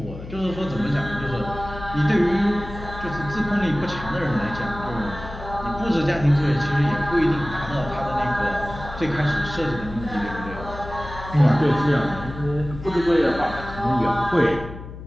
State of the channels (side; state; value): left; noise; hum, 12 dB below the sound